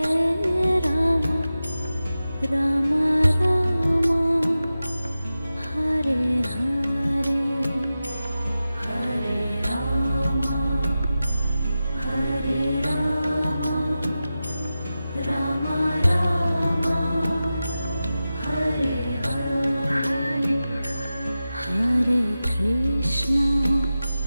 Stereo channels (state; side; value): inverted; both; correlation -0.94